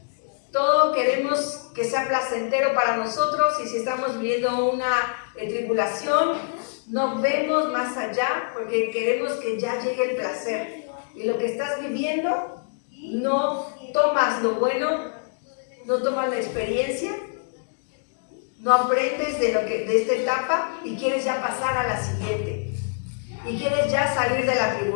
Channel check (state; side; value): silent; right; digital silence